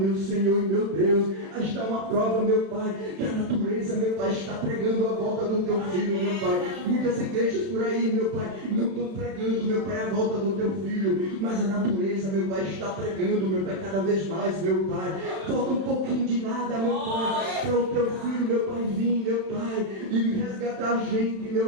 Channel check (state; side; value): late; left; 31 ms